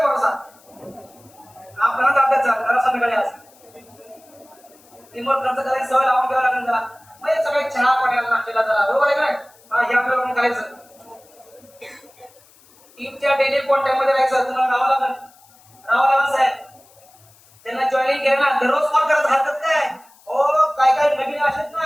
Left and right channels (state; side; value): noise; left; hiss, 28 dB below the sound